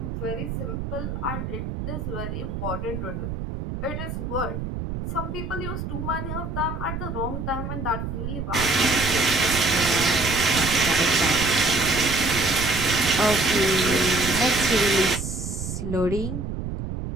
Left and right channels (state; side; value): noise; right; rumble, 5 dB below the sound